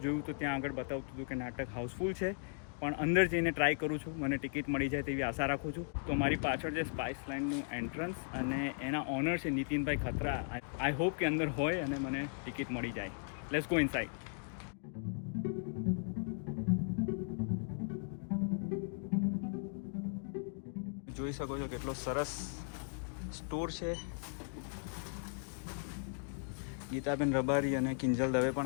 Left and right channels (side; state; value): right; silent; digital silence